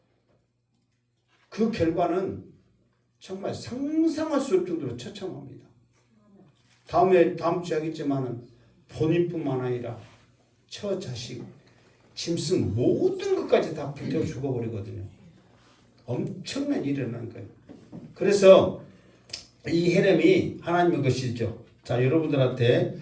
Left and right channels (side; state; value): both; identical; correlation 1.00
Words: 그 결과는 정말 상상할 수 없을 정도로 처참합니다. 다음 주에 하겠지만은 본인뿐만 아니라 처자식, 짐승 모든 것까지 다 불태워 죽어버리거든요. 엄청난 일이 일어난 거예요. 그래서 이 헤렘이 하나님의 것이죠. 자, 여러분들한테